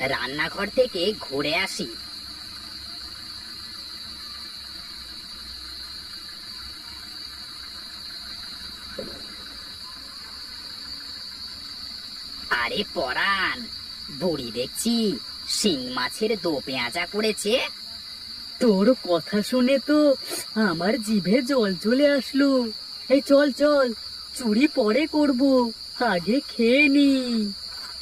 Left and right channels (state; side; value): identical; both; correlation 1.00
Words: রান্নাঘর থেকে ঘুরে আসি। আরে পরাণ, বুড়ি দেখছি শিং মাছের দো পেঁয়াজা করেছে। তোর কথা শুনে তো আমার জিভে জল চলে আসলো। এই চল চল, চুরি পরে করব, আগে খেয়ে নি।